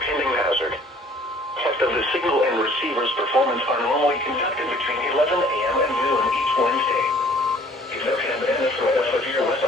hazard. Tests of the signal and receiver's performance are normally conducted between 11 a.m. and noon each Wednesday. If there have been a threat of severe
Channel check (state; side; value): normal; both; correlation 0.55